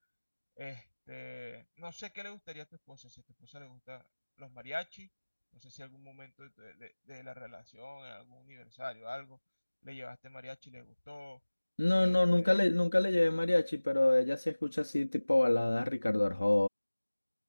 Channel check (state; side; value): inverted; both; correlation -1.00